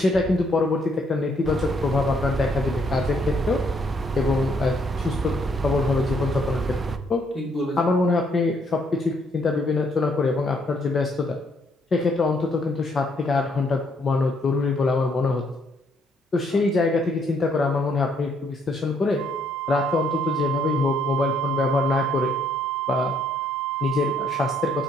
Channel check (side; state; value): both; normal; correlation 0.69